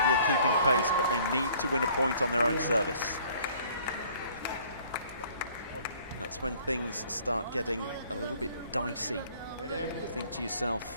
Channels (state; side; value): inverted; both; correlation -0.56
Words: keeping pace, but they need to win a point on their own service. That's when things start getting a little bit dicey. You think to